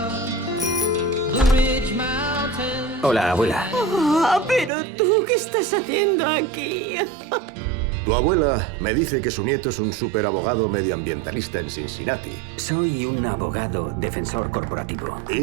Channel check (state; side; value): drops out; left; at 4.7 s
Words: Blue Ridge Mountains. Hola, abuela. Pero tú, ¿qué estás haciendo aquí? Tu abuela me dice que su nieto es un superabogado medioambientalista en Cincinnati. Soy un abogado defensor corporativo.